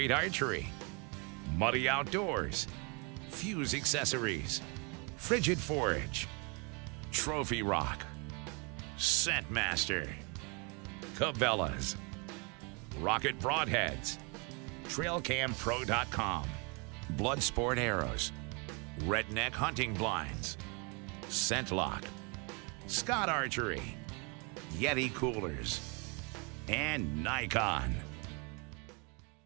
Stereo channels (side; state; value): left; quieter; 32.6 dB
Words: Archery, Muddy Outdoors, Fuse Accessories, Frigid Forage, Trophy Rock, Scentmaster, Cabela's, Rocket Broadheads, TrailCamPro.com, Bloodsport Arrows, Redneck Hunting Blinds, ScentLock, Scott Archery, Yeti Coolers, and Nikon.